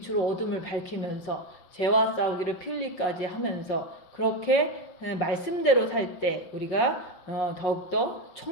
어둠을 밝히면서 죄와 싸우기를 필리까지 하면서 그렇게 말씀대로 살 때 우리가 더욱더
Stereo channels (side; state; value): right; late; 5.5 ms